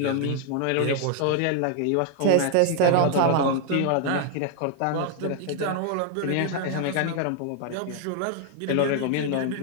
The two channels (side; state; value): both; different; correlation 0.00